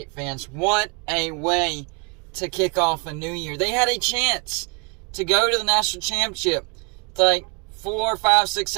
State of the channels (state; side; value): quieter; left; 33.4 dB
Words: fans. What a way to kick off a new year. They had a chance to go to the national championship. It's like 4, 5, 6,